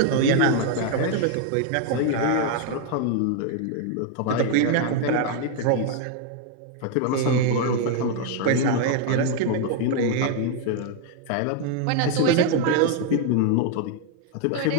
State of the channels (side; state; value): both; different; correlation 0.00